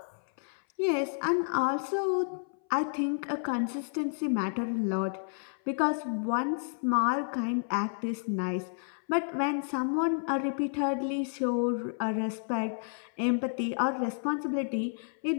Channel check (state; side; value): silent; right; 57 dB below the other